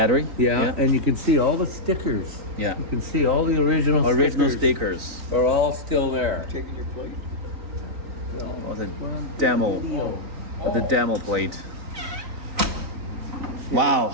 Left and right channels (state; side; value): late; left; 3.9 ms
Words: Yeah, and you can see all the stickers. Yeah. You can see all the original stickers. are all still there. Taking your plate. Oh, the demo plate. Wow,